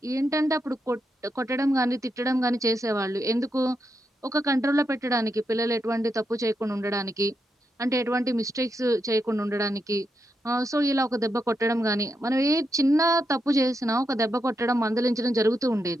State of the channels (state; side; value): normal; both; correlation 0.84